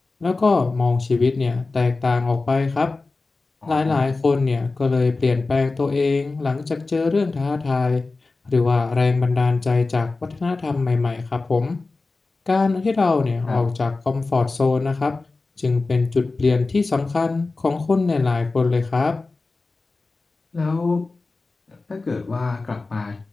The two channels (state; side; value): quieter; right; 3.6 dB